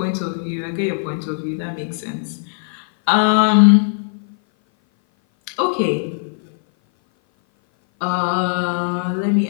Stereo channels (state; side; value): silent; right; 58 dB below the other